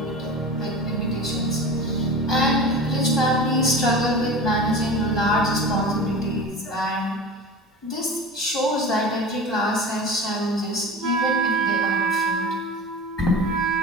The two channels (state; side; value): normal; both; correlation 0.33